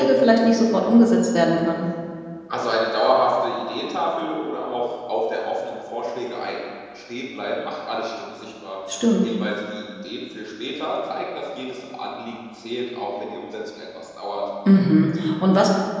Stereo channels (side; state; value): both; identical; correlation 1.00